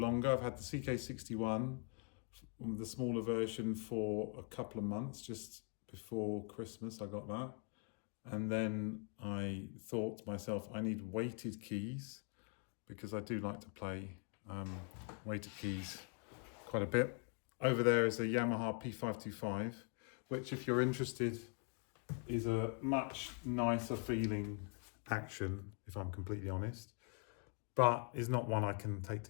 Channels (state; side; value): quieter; right; 37.5 dB